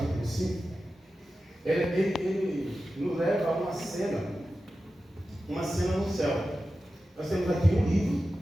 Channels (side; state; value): both; normal; correlation 0.93